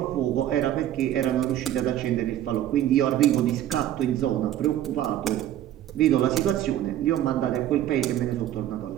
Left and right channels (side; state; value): left; quieter; 12.2 dB